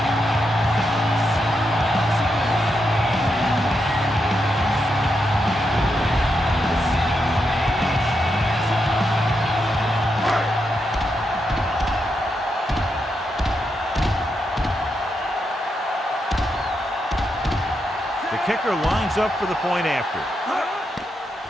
Kicker lines up for the point after.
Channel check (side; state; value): both; normal; correlation 0.83